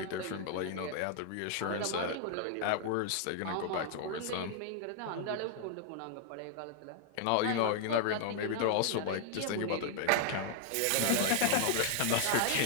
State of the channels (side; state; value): both; different; correlation 0.00